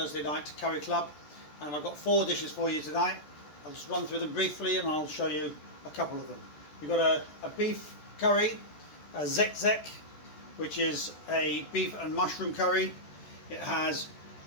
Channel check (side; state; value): right; late; 14 ms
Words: night curry club, and I've got 4 dishes for you tonight. I'll just run through them briefly and I'll show you a couple of them. We've got a beef curry, a zek, which is a beef and mushroom curry. It has